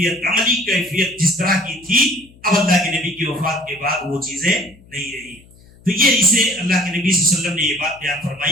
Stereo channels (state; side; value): noise; left; hum, 26 dB below the sound